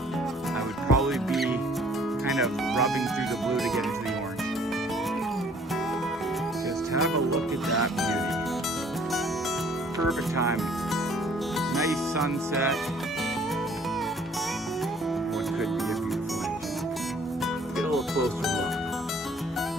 would probably be kind of rubbing through the blue to get into the orange. Just have a look at that beauty. Perfect timing. Nice sunset. What could be a beautiful engine. Get a little closer look.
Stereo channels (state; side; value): normal; both; correlation 0.58